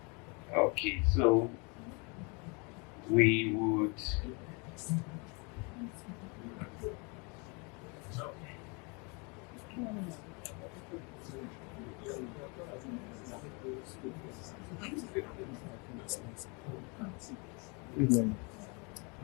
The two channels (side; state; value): right; quieter; 32.0 dB